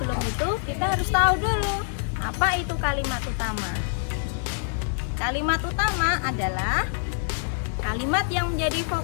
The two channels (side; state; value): right; silent; digital silence